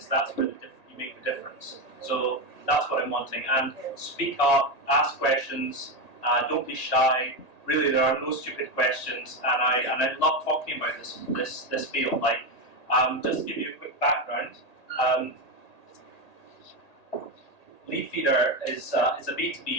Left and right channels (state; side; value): late; right; 1.8 ms